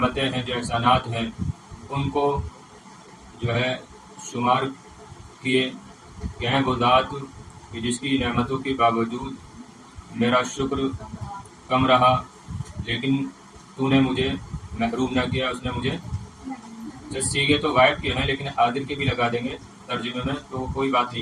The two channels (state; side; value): identical; both; correlation 1.00